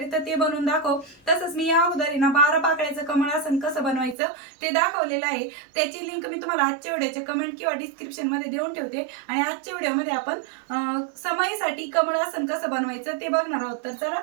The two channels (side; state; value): left; drops out; at 4.2 s